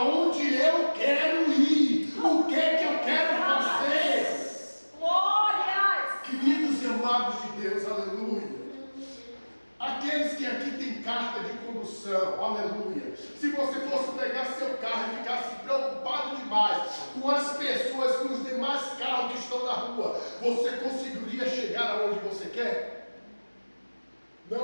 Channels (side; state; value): both; inverted; correlation -1.00